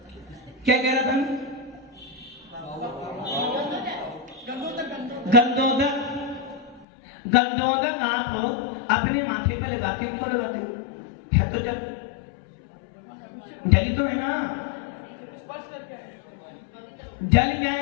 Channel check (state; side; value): drops out; right; at 6.9 s